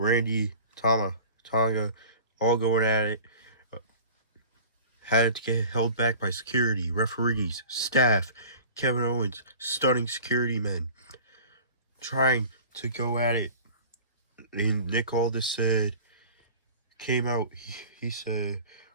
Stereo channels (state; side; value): inverted; both; correlation -0.42